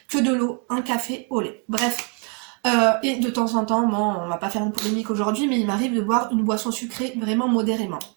que de l'eau, un café au lait. Bref. Et de temps en temps, bon, on va pas faire une polémique aujourd'hui, mais il m'arrive de boire une boisson sucrée vraiment modérément.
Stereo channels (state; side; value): quieter; left; 35.7 dB